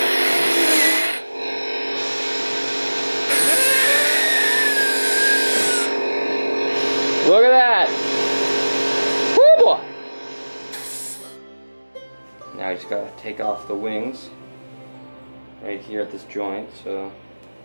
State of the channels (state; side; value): inverted; both; correlation -1.00